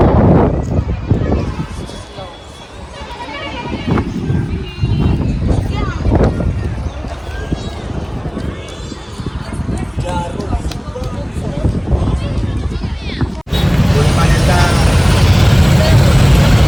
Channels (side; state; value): both; identical; correlation 1.00